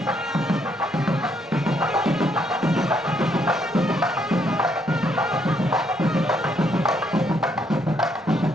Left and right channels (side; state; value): both; normal; correlation 0.72